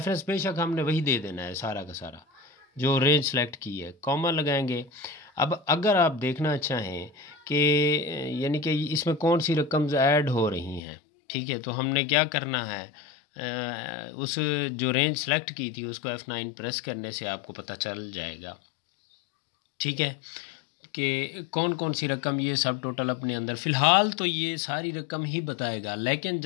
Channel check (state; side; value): drops out; right; at 10.8 s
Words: बेशक हमने वही दे देना है सारा का सारा, जो रेंज सेलेक्ट की है, कॉमा लगाएंगे। अब अगर आप देखना चाहें कि यानी कि इसमें कौन सी रकम्स ऐड हो रही हैं, ठीक है, तो हमने क्या करना है, उस जो रेंज सेलेक्ट की थी उसको F9 प्रेस करने से आपको पता चल जाएगा, ठीक है, कि कौन कौन सी रकम ये सब टोटल अपने अंदर। फ़िलहाल तो ये सारी रकम ही बताएगा, लेकिन